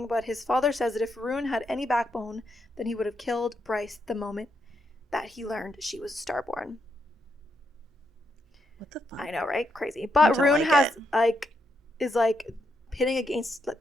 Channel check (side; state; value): both; normal; correlation 0.80